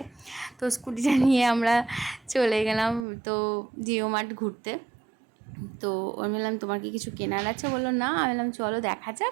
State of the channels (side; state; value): left; drops out; at 3.1 s